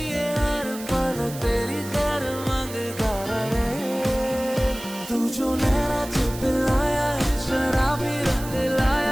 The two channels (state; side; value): noise; right; hiss, 14 dB below the sound